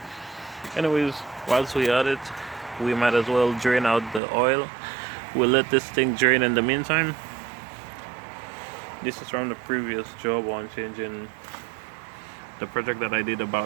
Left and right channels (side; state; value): left; drops out; at 4.2 s